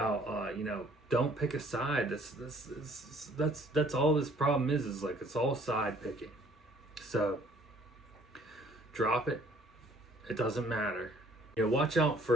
you know, don't pick a side. That's all this problem is like, it's all side picking. So drop it. It doesn't matter. You know, watch out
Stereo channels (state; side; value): normal; both; correlation 0.58